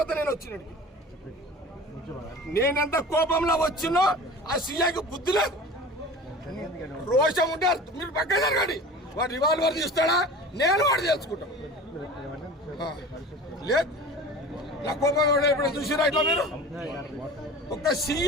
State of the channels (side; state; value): both; normal; correlation 0.38